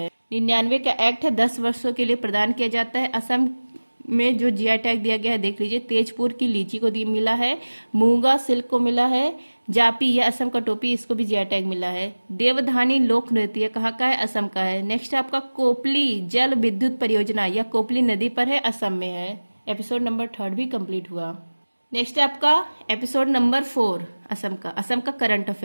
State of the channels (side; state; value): both; inverted; correlation -1.00